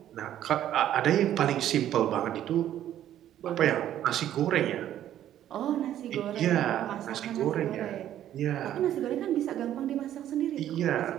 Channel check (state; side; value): quieter; left; 11.6 dB